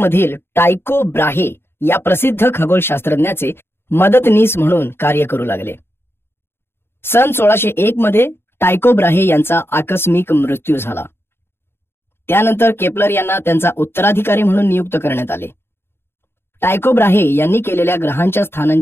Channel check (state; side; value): late; right; 0.11 ms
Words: टायको ब्राहे या प्रसिद्ध खगोलशास्त्रज्ञाचे मदतनीस म्हणून कार्य करू लागले. सन 1601 मध्ये टायको ब्राहे यांचा आकस्मिक मृत्यू झाला. त्यानंतर केपलर यांना त्यांचा उत्तराधिकारी म्हणून नियुक्त करण्यात आले. टायको ब्राहे यांनी केलेल्या ग्रहांच्या